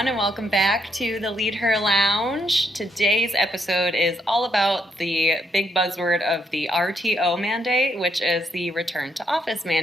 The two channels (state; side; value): normal; both; correlation 0.75